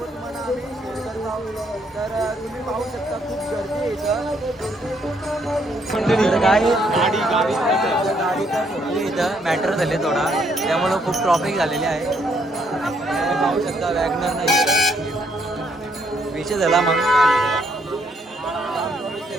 तुम्हाला आम्ही शेअर करत आहोत. तर तुम्ही पाहू शकता खूप गर्दी आहे इथं. गाडी तर इथं मॅटर झाले थोडा, त्यामुळं खूप ट्रॉफिक झालेली आहे. तुम्ही पाहू शकता वॅगनर नाही विषय झाला म्हणून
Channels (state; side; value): normal; both; correlation 0.71